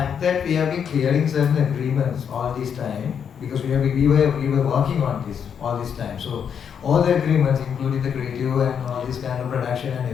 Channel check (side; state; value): right; quieter; 7.6 dB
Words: that we have been clearing certain agreements all this time, because we were working on this all this time. So all the agreements, including the creative and all this kind of production